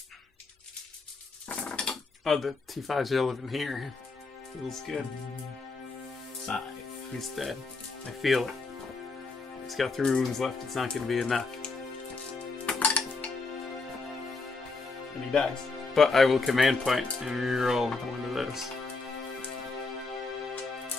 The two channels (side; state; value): right; quieter; 3.9 dB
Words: Oh, the T5's relevant here. Feels good. 5. He's dead. I feel it. He's got 3 wounds left. It's not going to be enough. And he dies. But I will command point and reroll one of those.